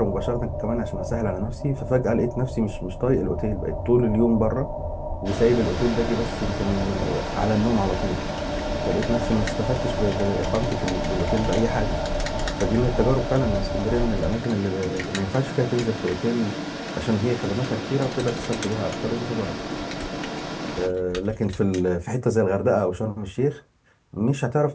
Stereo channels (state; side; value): identical; both; correlation 1.00